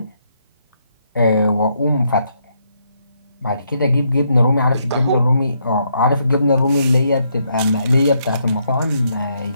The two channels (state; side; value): inverted; both; correlation -0.76